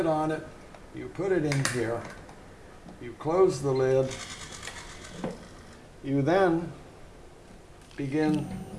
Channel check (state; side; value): identical; both; correlation 1.00